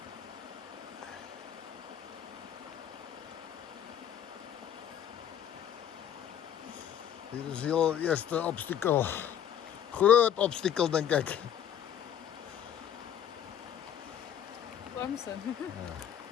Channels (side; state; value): right; quieter; 9.5 dB